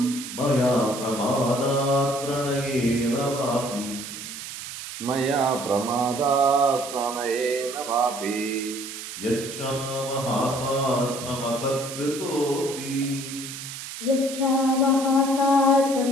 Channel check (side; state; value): right; noise; hiss, 10 dB below the sound